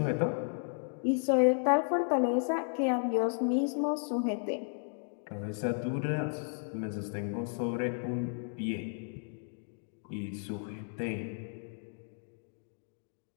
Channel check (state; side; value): silent; right; 55 dB below the other